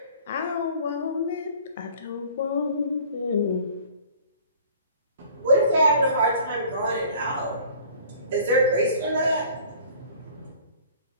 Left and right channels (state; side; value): inverted; both; correlation -0.49